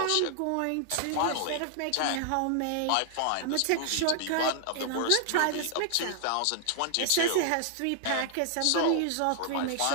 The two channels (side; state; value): both; different; correlation 0.00